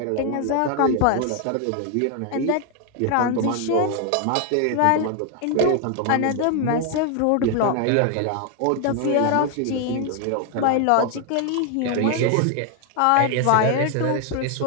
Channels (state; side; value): different; both; correlation 0.00